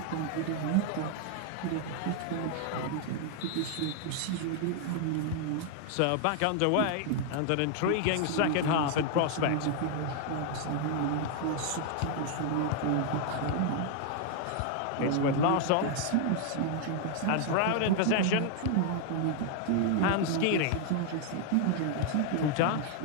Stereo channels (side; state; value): both; different; correlation 0.00